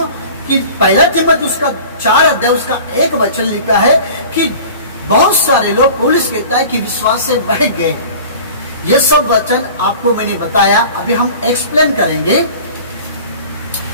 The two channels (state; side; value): inverted; both; correlation -0.42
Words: कि 1 तिमोथी उसका 4 अध्याय उसका 1 वचन लिखा है कि बहुत सारे लोग, पौलुस कहता है कि विश्वास से बह गए। ये सब वचन आपको मैंने बताया, अभी हम एक्सप्लेन करेंगे।